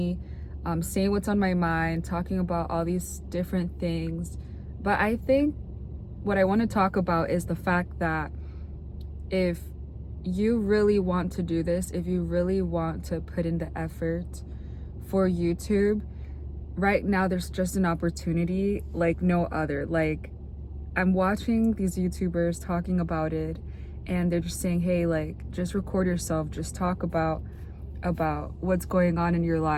saying what's on my mind, talking about all these different things. But I think what I want to talk about is the fact that if you really want to do this, if you really want to put in the effort for YouTube, right now there's just an opportunity like no other. Like, I'm watching these YouTubers talking about it, and they're just saying, hey, like, just record yourself, just talk about what's going on in your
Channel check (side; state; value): both; identical; correlation 1.00